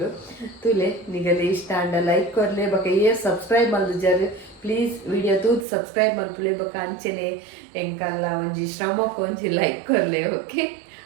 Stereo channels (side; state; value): left; drops out; at 5.7 s